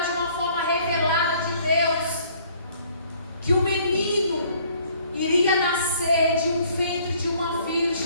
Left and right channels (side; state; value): both; inverted; correlation -0.59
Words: de uma forma revelada de Deus. Que o menino iria nascer de um ventre de uma